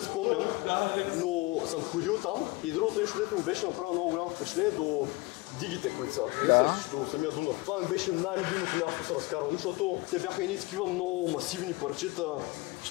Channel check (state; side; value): quieter; right; 22.5 dB